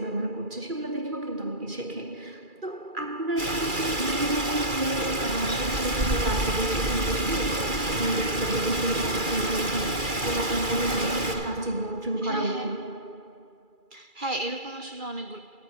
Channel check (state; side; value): late; left; 2.3 ms